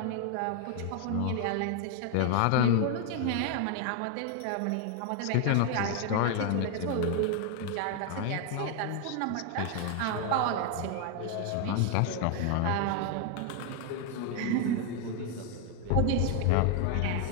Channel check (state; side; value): different; both; correlation 0.00